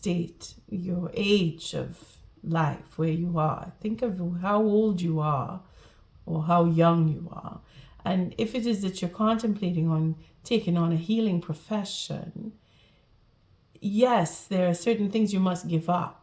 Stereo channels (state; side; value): identical; both; correlation 1.00